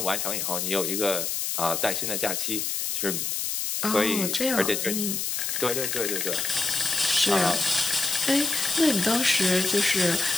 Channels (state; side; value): noise; left; hiss, 1 dB below the sound